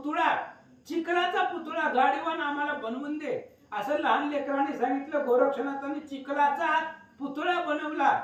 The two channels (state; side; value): identical; both; correlation 1.00